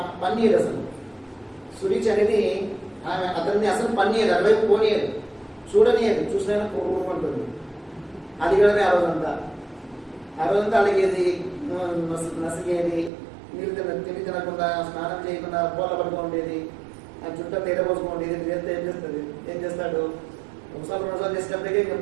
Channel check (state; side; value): drops out; left; at 13.1 s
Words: పన్నీరు అసలు సురుచి అనేది ఆమె అతన్ని అసలు పన్నీరు, అటువైపు పోనీయదు, చూడనియదు, చూసినా కోరుకుంటుంది. అది కూడా ఆ రోజంతా అడిగేది, నసిగేది, నీళ్ళు తిండి తినకుండా, స్నానం చేయకుండా పూల పడుకోండేది, ఆ చుట్టూ తేట పోసుకోండేది. చేస్తే ఏం చేస్తాడు, ఒకసారి చేసేటప్పటికే ఇంకా